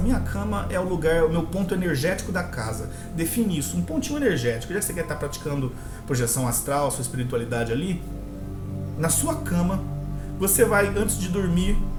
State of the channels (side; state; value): both; identical; correlation 1.00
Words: minha cama é o lugar, o meu ponto energético da casa. Define isso, um pontinho energético. Já que você quer estar praticando projeção astral, sua espiritualidade ali, na sua cama, você vai, antes de dormir,